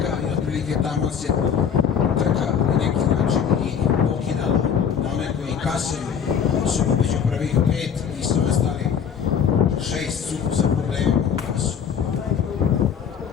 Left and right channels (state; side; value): quieter; right; 7.6 dB